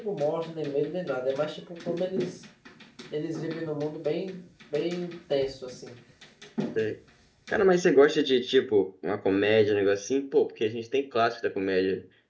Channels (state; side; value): identical; both; correlation 1.00